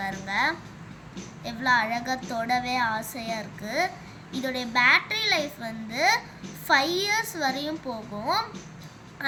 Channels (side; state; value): both; identical; correlation 1.00